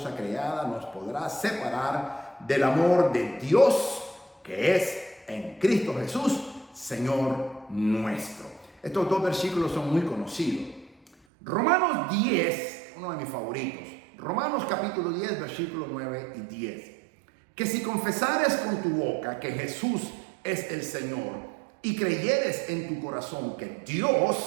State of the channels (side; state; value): left; drops out; at 11.1 s